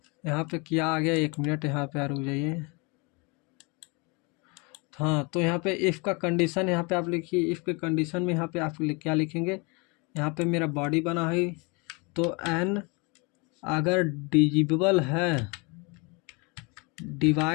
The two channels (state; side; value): quieter; right; 29.9 dB